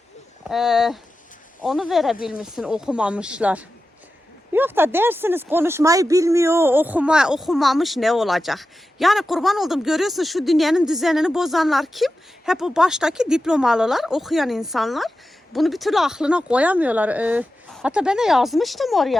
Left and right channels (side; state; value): both; normal; correlation 0.92